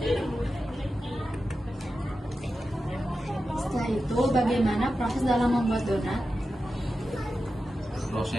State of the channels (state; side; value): normal; both; correlation 0.91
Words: Setelah itu, bagaimana proses dalam membuat donat?